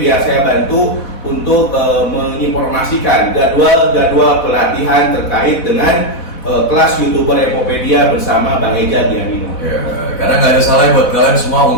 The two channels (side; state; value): right; late; 4.1 ms